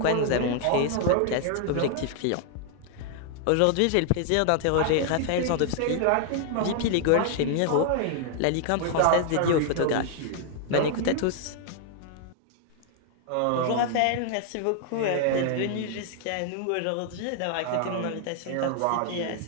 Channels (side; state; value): both; different; correlation 0.00